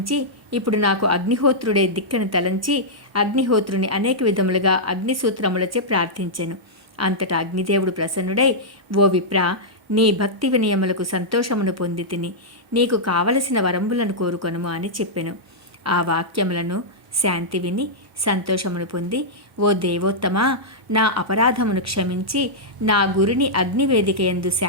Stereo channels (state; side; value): normal; both; correlation -0.09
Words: ఇప్పుడు నాకు అగ్నిహోత్రుడే దిక్కని తలంచి అగ్నిహోత్రుని అనేక విధములుగా అగ్నిసూత్రములచే ప్రార్థించెను. అంతటా అగ్నిదేవుడు ప్రసన్నుడై, ఓ విప్ర, నీ భక్తి వినయములకు సంతోషమును పొంది తిని నీకు కావలసిన వరంబులను కోరుకొనుము అని చెప్పెను. ఆ వాక్యములను శాంతి విని సంతోషమును పొంది, ఓ దేవోత్తమా, నా అపరాధమును క్షమించి నా గురిని అగ్నివేదిక యందు